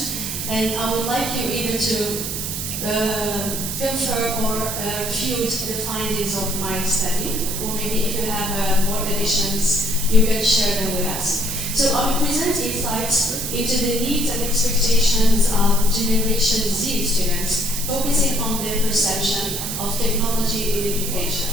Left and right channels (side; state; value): right; noise; hiss, 4 dB below the sound